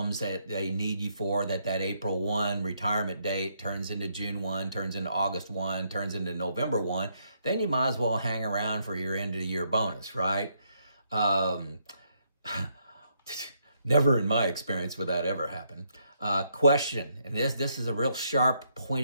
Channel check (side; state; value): both; inverted; correlation -0.74